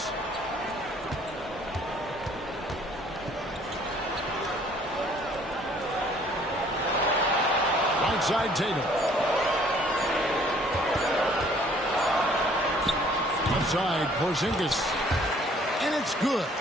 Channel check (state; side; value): normal; both; correlation 0.58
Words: Right side, Tatum. Outside, Porzingis. And it's good